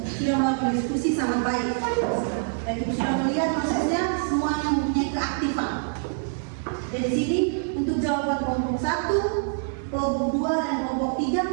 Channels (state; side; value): silent; left; digital silence